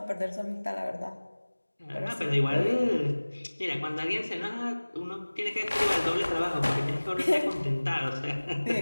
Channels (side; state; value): both; inverted; correlation -1.00